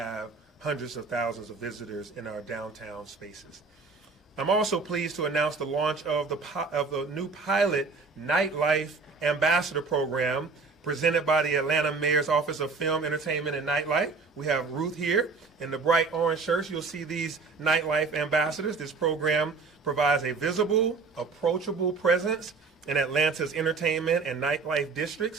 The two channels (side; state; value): left; quieter; 4.4 dB